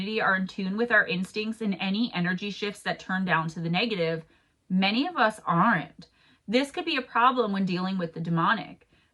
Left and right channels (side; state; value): both; identical; correlation 1.00